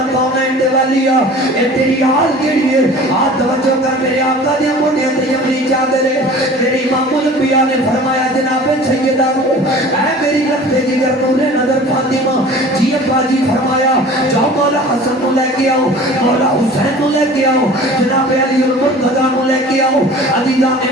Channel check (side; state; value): both; normal; correlation 0.43